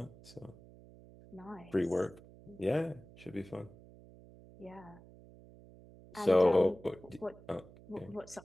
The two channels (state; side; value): noise; right; hum, 21 dB below the sound